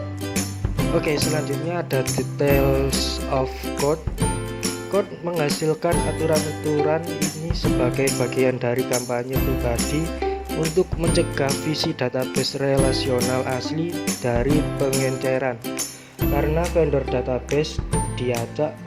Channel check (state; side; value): identical; both; correlation 1.00